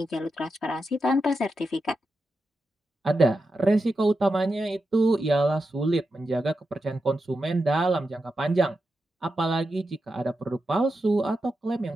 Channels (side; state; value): both; normal; correlation 0.88